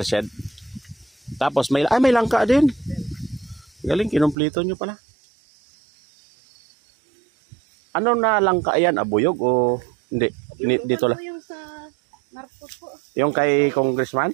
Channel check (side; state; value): left; drops out; at 4.4 s